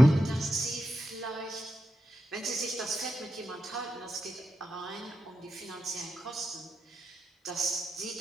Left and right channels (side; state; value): both; normal; correlation 0.87